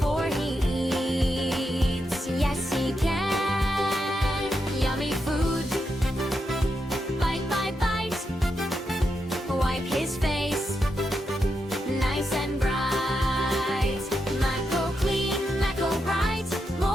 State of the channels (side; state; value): both; normal; correlation 0.84